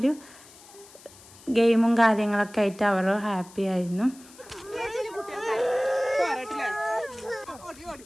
ഗെയിമും കാര്യങ്ങളൊക്കെ ആയിട്ട് അവർ ഹാപ്പി ആയിരുന്നു.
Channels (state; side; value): noise; left; hiss, 22 dB below the sound